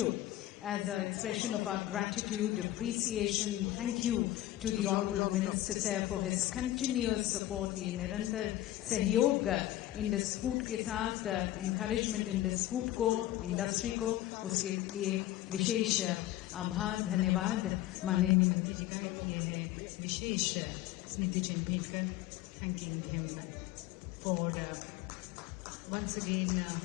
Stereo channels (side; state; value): right; quieter; 14.7 dB